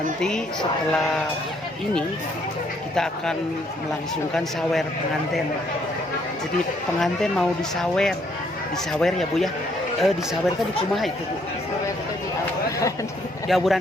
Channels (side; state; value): both; normal; correlation 0.68